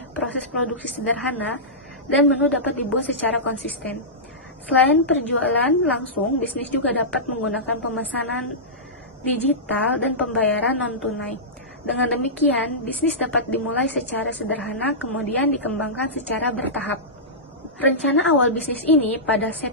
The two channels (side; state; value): both; normal; correlation -0.15